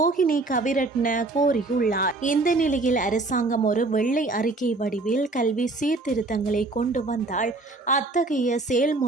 கவிரட்ன கோரியுள்ளார். இந்த நிலையில் அரசாங்கம் ஒரு வெள்ளை அறிக்கை வடிவில் கல்வி சீர்திருத்தங்களை கொண்டு வந்தால் அத்தகைய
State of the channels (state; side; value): quieter; left; 3.2 dB